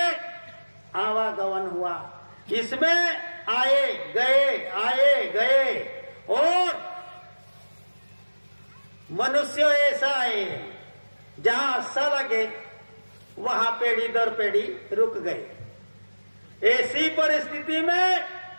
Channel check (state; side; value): inverted; both; correlation -1.00